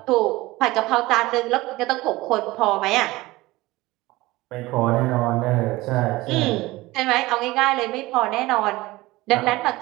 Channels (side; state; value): left; quieter; 19.7 dB